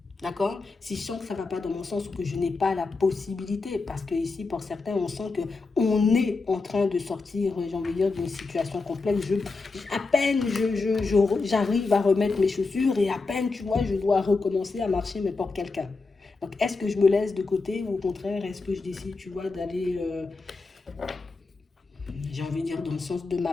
D'accord? Si je sens que ça ne va pas dans mon sens ou que je n'ai pas la possibilité, parce que ici, pour certains, on sent qu'on est en train de sortir, j'ai envie de dire, d'une situation complexe. À peine j'arrive à remettre mes chaussures et à peine, tu vois, je dois recommencer à marcher, mais pour quelqu'un. Donc, est-ce que je me laisse de côté ou au contraire, est-ce que je décide, tu vois, d'aller, j'ai envie de dire, dans le sens de ma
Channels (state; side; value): quieter; right; 3.9 dB